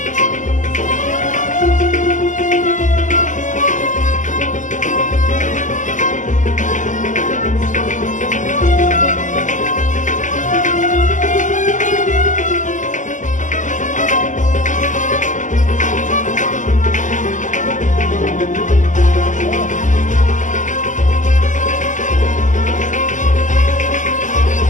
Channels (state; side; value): late; right; 0.37 ms